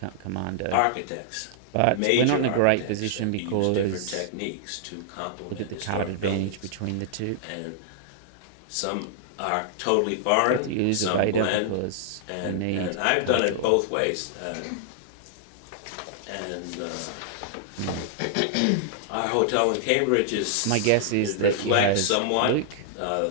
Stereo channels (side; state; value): both; different; correlation -0.01